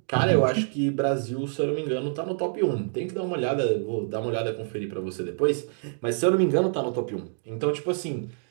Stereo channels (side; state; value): left; silent; digital silence